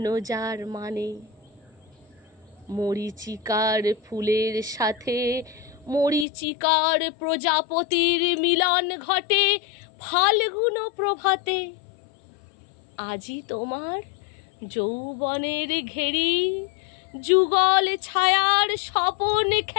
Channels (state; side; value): drops out; right; at 6.2 s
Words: যার মানে। মরীচিকার ফুলের সাথে মরীচিকার প্রজাপতির মিলন ঘটে ফাল্গুন প্রভাতে। আজি তোমার যৌবনের ঘেরি, যুগল ছায়ার স্বপন